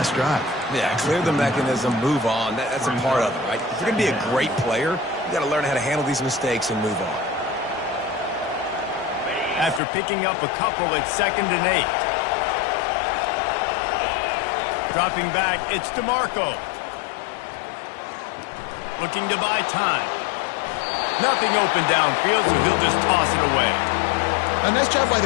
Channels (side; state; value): right; drops out; at 9.8 s